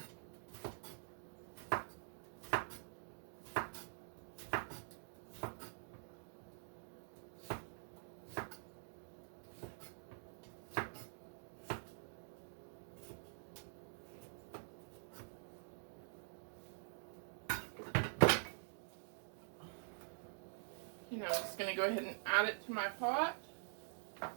I'm just going to go ahead and add it to my pot.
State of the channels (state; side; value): silent; left; digital silence